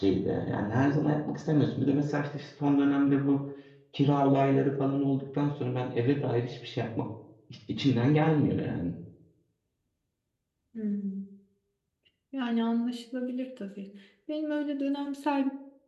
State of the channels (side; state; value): both; identical; correlation 1.00